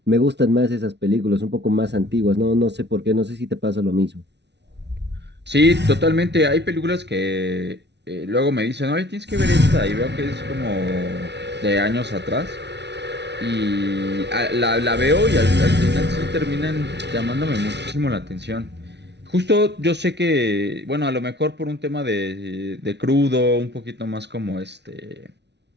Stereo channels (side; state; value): left; late; 0.50 ms